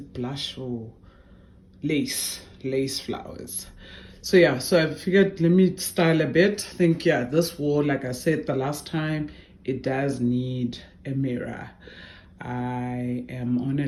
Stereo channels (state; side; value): identical; both; correlation 1.00